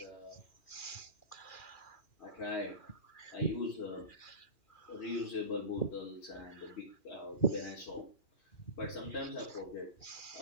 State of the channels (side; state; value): right; late; 2.4 ms